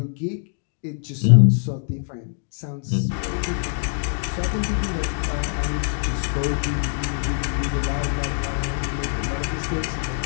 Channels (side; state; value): right; silent; 63 dB below the other